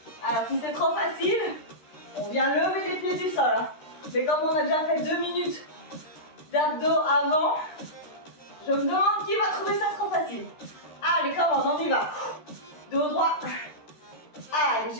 Alors si c'est trop facile, on vient lever les pieds du sol. Hein. Mais comme on a déjà fait 2 minutes d'abdos avant, je me demande qui va trouver ça trop facile. Allez, comment on y va. Dos droit. Allez,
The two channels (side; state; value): right; late; 13 ms